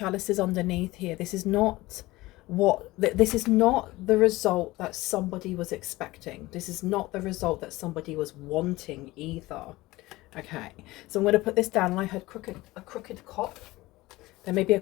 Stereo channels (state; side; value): quieter; right; 19.3 dB